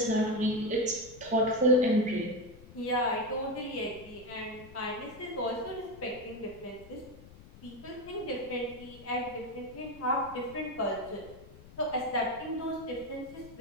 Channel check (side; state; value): left; noise; rumble, 19 dB below the sound